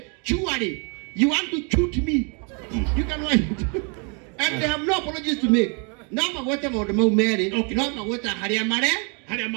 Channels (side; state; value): left; quieter; 36.2 dB